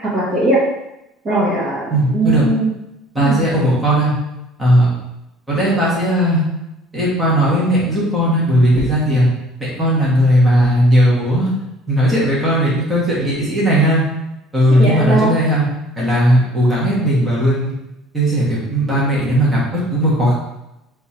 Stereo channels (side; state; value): both; normal; correlation 0.55